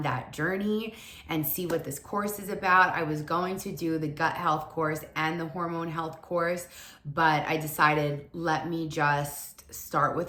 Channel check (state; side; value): identical; both; correlation 1.00